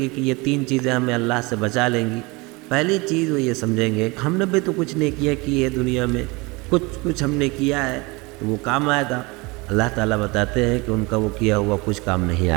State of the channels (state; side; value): quieter; left; 25.3 dB